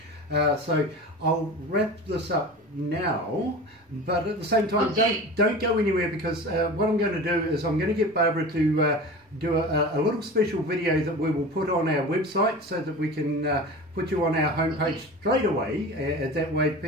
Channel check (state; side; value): normal; both; correlation 0.34